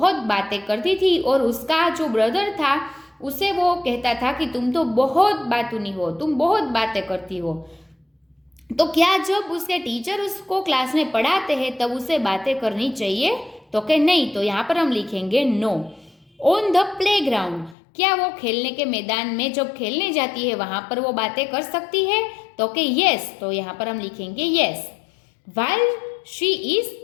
बातें करती थी, और उसका जो ब्रदर था उसे वो कहता था कि तुम तो बहुत बातूनी हो, तुम बहुत बातें करती हो। तो क्या जब उसके टीचर उसको क्लास में पढ़ाते हैं तब उसे बातें करनी चाहिए? तो कि नहीं, तो यहाँ पर हम लिखेंगे नो। ऑन द प्लेग्राउंड, क्या वो खेलने के मैदान में जब खेलने जाती है वहाँ पर वो बातें कर सकती है? तो कि यस, तो यहाँ पर हम लिखेंगे yes. While she is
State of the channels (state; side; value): drops out; right; at 17.8 s